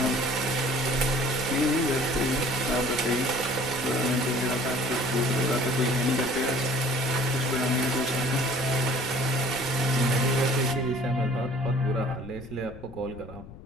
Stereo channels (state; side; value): noise; left; rumble, 17 dB below the sound